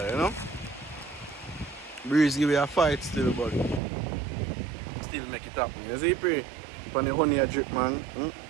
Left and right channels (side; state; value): left; drops out; at 3.8 s